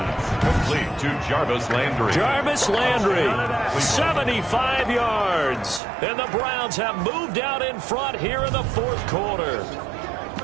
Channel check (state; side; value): drops out; left; at 5.8 s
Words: Complete to Jarvis Landry. Jarvis Landry, 75 yards. And the Browns have moved out in front here in the fourth quarter.